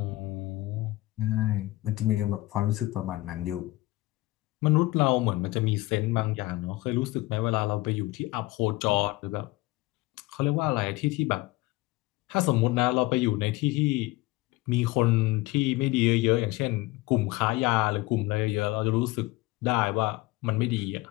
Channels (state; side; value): quieter; right; 19.7 dB